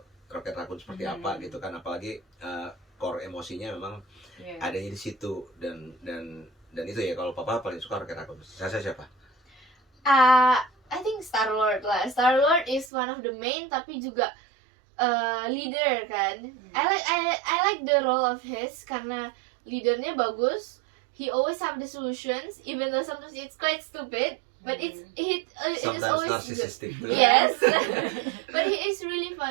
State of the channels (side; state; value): left; drops out; at 12.9 s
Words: Rocket Raccoon seperti apa gitu kan. Apalagi core emosinya memang Iya. adanya di situ. Dan itu ya, kalau Papa paling suka Rocket Raccoon. Saya siapa? I think Star-Lord lah. Star-Lord is one of the main tapi juga leader kan. I like the role of his karena leadernya bagus. He always have the solutions even though sometimes it's quite stupid, but it is Sometimes always good. narcissistic too. Yes. But he is really